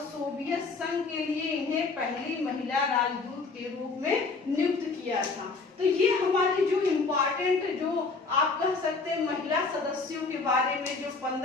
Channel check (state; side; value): quieter; right; 4.1 dB